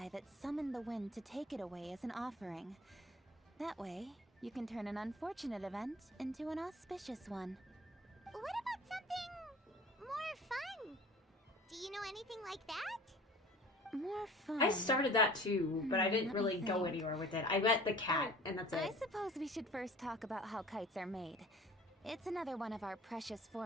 that summoned the wind to take it away as an offering. That way, you can turn an unfortunate event into an auspicious one. What about something more fun? Do you know anything like that? More fun. I started that too, but I didn't let me really go think. anywhere with it. I met the cat, and that's I it. suppose we should first talk about how kites are made. It's another one of our precious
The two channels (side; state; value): both; normal; correlation 0.46